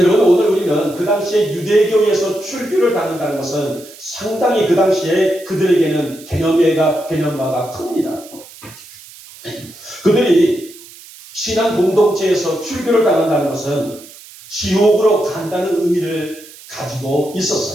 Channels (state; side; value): noise; right; hiss, 19 dB below the sound